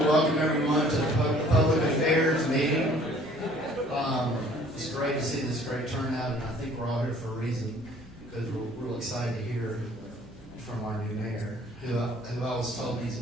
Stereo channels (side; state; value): both; normal; correlation 0.55